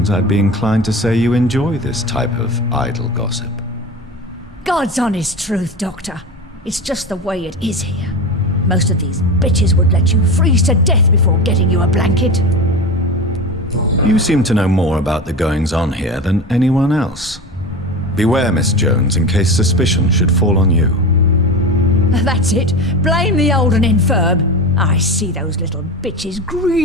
I'd be inclined to say you enjoy this type of idle gossip. God's honest truth, Doctor. It's just the way it is here. Most of these bitches would let you freeze to death before getting you a blanket. You seem to know more about the goings-on here than anyone else. Beware, Miss Jones, in case suspicion should fall on you. That's it. Blame the old and infirm. I see those little bitches'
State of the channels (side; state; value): both; normal; correlation 0.26